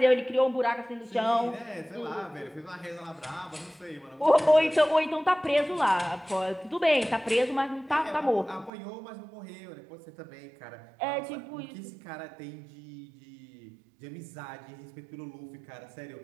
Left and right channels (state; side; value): drops out; left; at 8.7 s